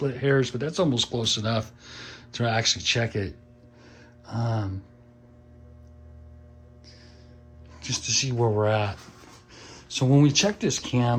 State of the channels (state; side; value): identical; both; correlation 1.00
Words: hairs, but that's almost close enough to actually check it. Just to see where we're at. So when we check this